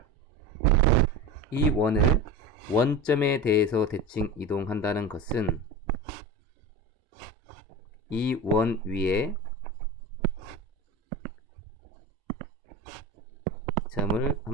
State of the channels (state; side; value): normal; both; correlation 0.28